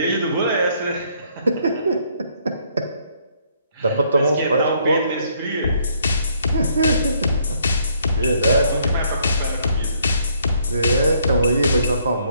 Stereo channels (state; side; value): inverted; both; correlation -0.67